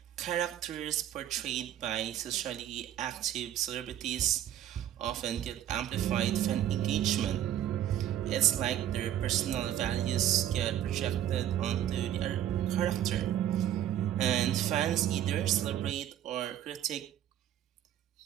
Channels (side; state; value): left; quieter; 11.4 dB